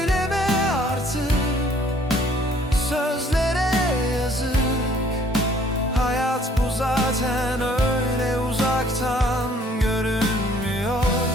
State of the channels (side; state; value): both; normal; correlation 0.59